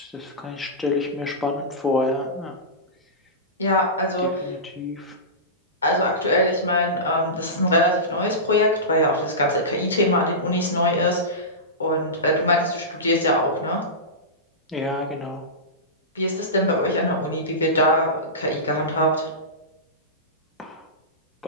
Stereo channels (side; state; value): both; normal; correlation -0.19